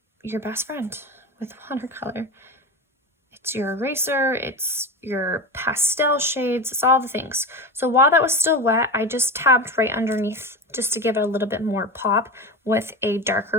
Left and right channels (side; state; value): both; normal; correlation 0.24